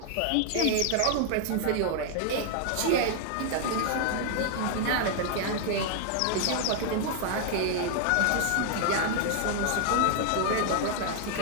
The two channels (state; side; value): different; both; correlation 0.00